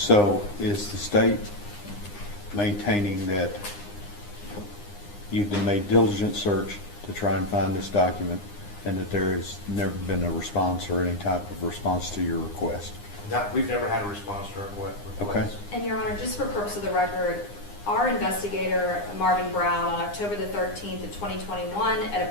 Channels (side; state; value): right; late; 9.8 ms